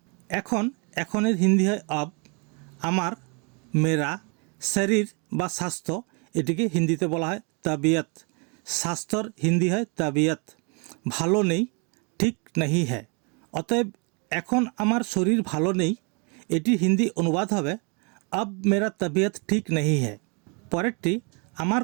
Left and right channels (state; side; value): quieter; left; 34.0 dB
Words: এখনের হিন্দি হয় अब, আমার, মেরা, শরীর বা স্বাস্থ্য, এটিকে হিন্দিতে বলা হয় তবিয়ত। স্বাস্থ্যর হিন্দি হয় তবিয়ত। ভালো নেই, ঠিক নাহি হ্যায়। অতএব এখন আমার শরীর ভালো নেই, এটি হিন্দি অনুবাদ হবে अब मेरा तबीयत ठीक नहीं है। পরেরটি আমার